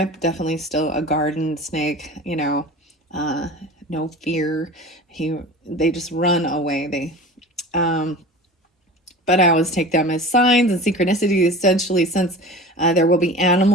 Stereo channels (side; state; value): both; normal; correlation 0.37